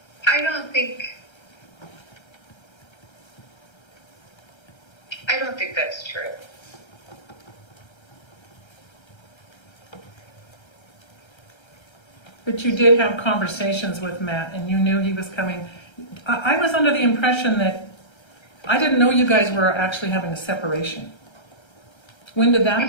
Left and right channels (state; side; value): late; right; 1.3 ms